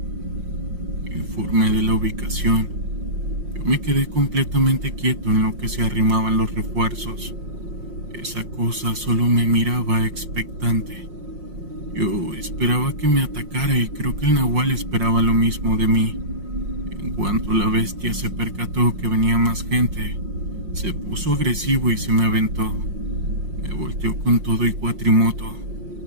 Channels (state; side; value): late; left; 5.6 ms